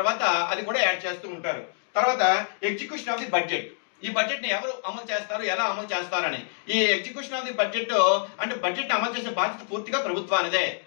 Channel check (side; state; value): right; silent; digital silence